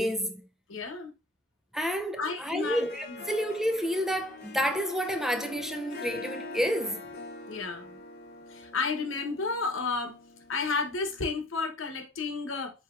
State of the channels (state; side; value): normal; both; correlation 0.54